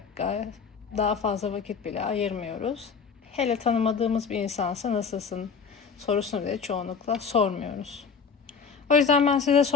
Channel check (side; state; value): right; quieter; 5.9 dB